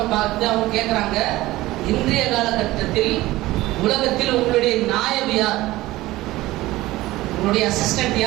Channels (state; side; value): quieter; left; 17.7 dB